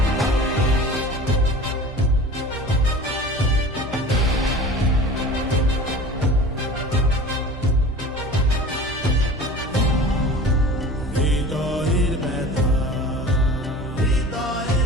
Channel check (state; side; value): normal; both; correlation 0.39